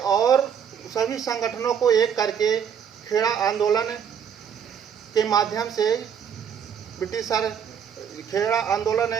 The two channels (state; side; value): quieter; left; 7.9 dB